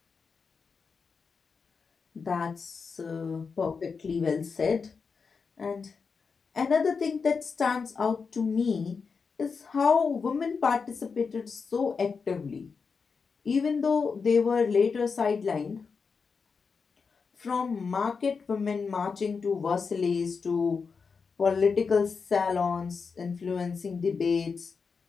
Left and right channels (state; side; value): quieter; right; 5.3 dB